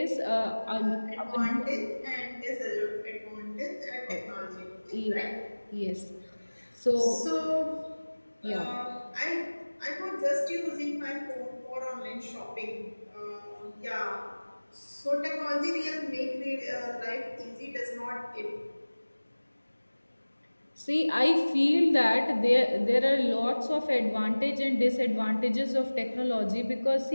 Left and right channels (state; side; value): inverted; both; correlation -1.00